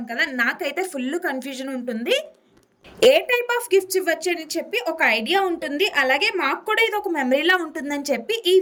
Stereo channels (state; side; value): identical; both; correlation 1.00